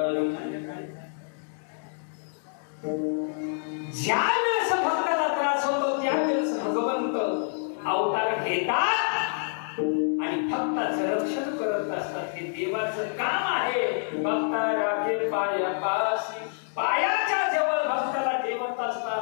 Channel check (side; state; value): right; silent; digital silence